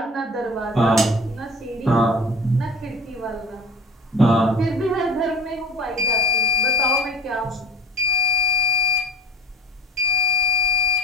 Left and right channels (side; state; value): both; normal; correlation 0.37